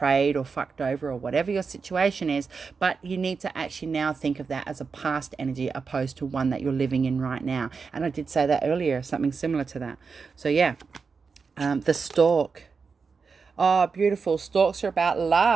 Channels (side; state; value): left; quieter; 5.1 dB